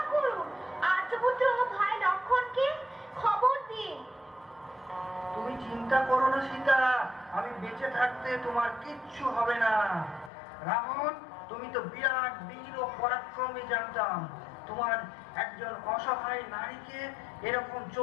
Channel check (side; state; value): right; drops out; at 10.3 s